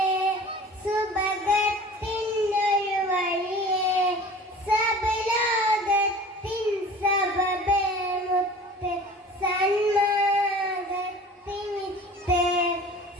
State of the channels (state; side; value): normal; both; correlation 0.42